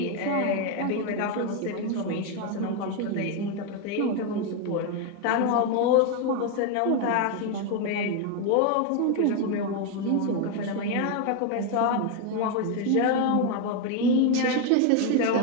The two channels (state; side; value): different; both; correlation 0.02